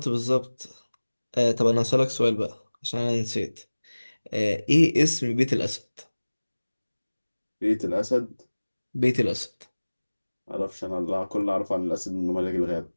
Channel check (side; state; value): both; inverted; correlation -1.00